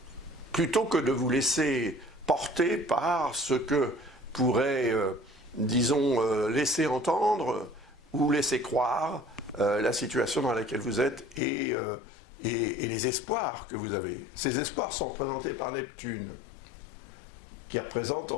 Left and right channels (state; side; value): drops out; right; at 11.4 s